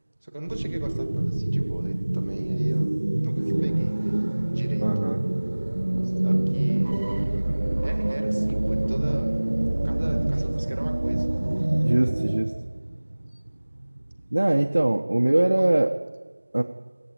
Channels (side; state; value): both; inverted; correlation -1.00